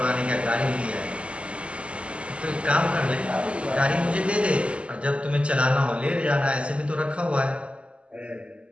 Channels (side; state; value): left; late; 0.056 ms